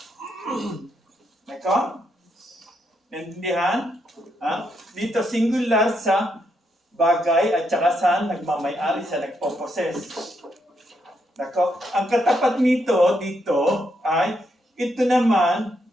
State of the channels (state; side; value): normal; both; correlation 0.78